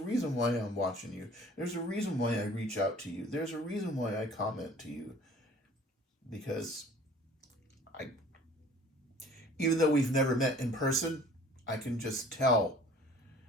why I'm watching you. There's a reason why I reach out to you. There's a reason why I comment to you. Because even though we've never met in person, I can just tell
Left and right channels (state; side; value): normal; both; correlation 0.50